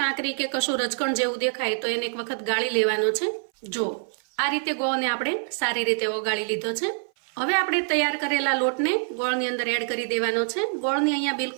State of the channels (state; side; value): silent; left; 58 dB below the other